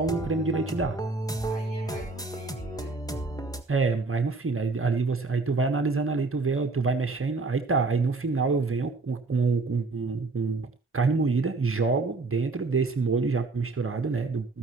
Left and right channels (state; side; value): quieter; left; 3.7 dB